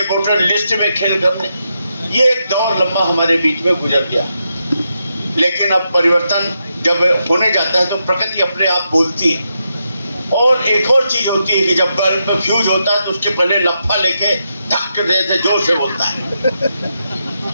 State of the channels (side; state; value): both; inverted; correlation -0.84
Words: वोटर लिस्ट में खेल करने। ये एक दौर लंबा हमारे बीच में गुजर गया। लेकिन अब परिवर्तन जब होने जाता है तो प्रकृति अपने आप बोलती है। और एक और चीज होती है कि जब बल्ब में फ्यूज होता है तो उसके पहले लफा लेके धक्के देते जोर से बोलता है।